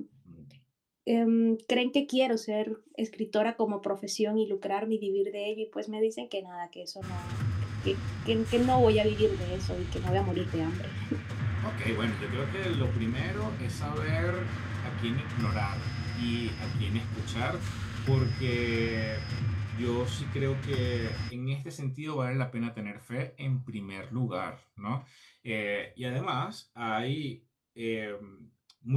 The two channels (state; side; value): identical; both; correlation 1.00